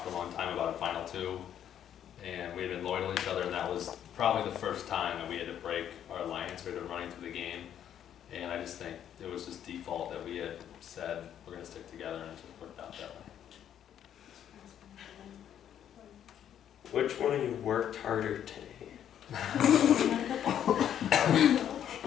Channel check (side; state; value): right; quieter; 9.9 dB